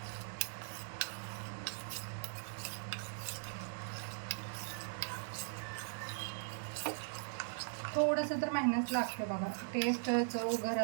थोडंसं तर मेहनत लागते बघा. टेस्ट चव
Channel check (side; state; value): left; silent; digital silence